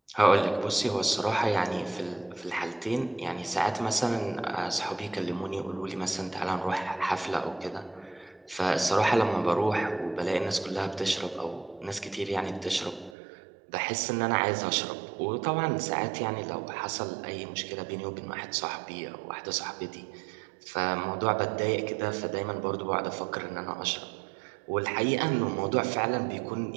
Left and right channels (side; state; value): left; drops out; at 13.2 s